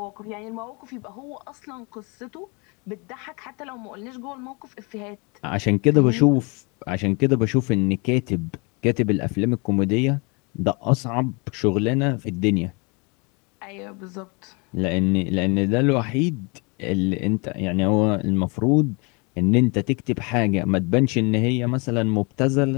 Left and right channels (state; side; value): quieter; right; 30.4 dB